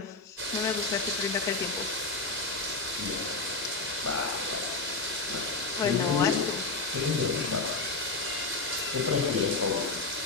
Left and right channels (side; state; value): right; quieter; 3.5 dB